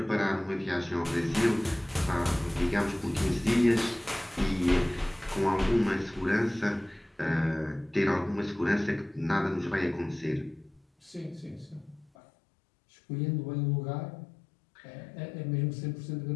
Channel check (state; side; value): drops out; right; at 12.1 s